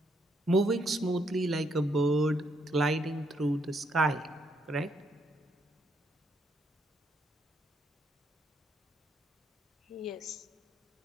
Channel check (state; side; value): normal; both; correlation 0.74